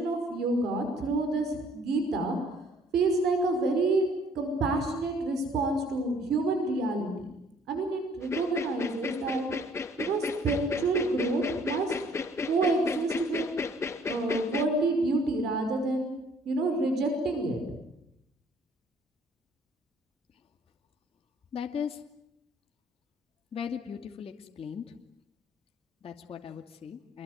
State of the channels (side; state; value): both; normal; correlation 0.59